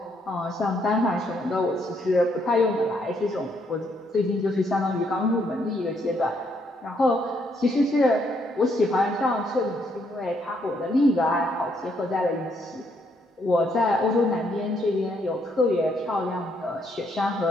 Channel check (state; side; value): normal; both; correlation 0.73